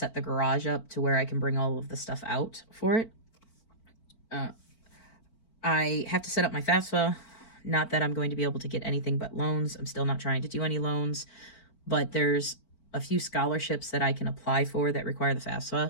the garage up to where I can bring all of the stuff out for it. I have to set up my FAFSA. Not that I'm going to be able to get anything but loans. I'm still not trying to do any loans, but there's a few scholarships that I can apply for that require the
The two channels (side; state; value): right; late; 4.5 ms